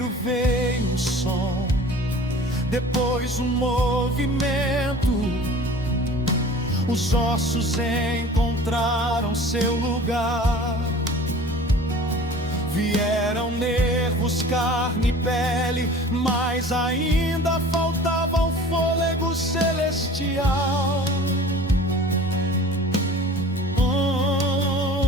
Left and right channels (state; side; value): normal; both; correlation 0.44